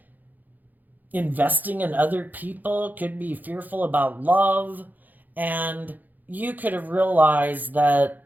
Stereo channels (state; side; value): late; left; 0.084 ms